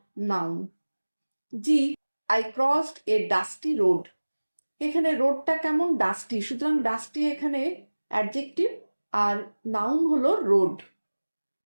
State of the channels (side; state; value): both; inverted; correlation -1.00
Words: noun. G, I crossed A dusty road, এখানে রোডটা কেমন, ডাস্টি, সুতরাং ডাস্টি এখানে অ্যাডজেক্টিভ আর নাউন হলো road.